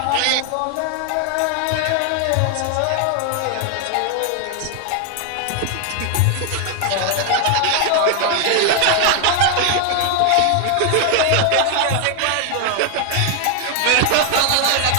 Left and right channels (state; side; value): different; both; correlation 0.00